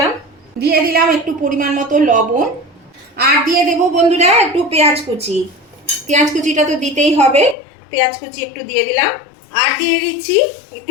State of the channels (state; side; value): drops out; right; at 7.6 s